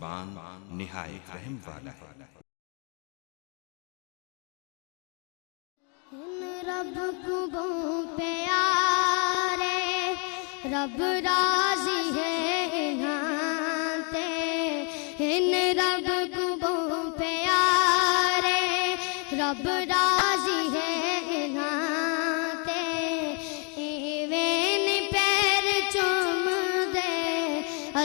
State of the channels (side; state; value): right; quieter; 36.5 dB